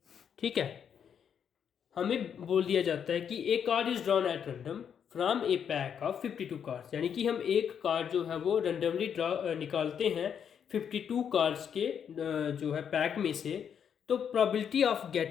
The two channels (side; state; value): right; quieter; 8.0 dB